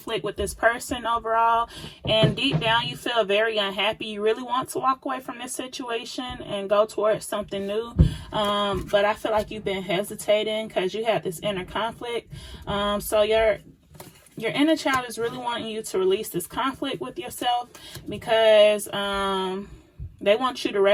with this person overall, and deep down you feel very unhappy. You really want to walk away from this situation and go towards something new, but I feel like you've been hesitating because you had this inner conflict. So your inner child is really wanting you to release this conflict with yourself, because they want you to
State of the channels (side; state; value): both; identical; correlation 1.00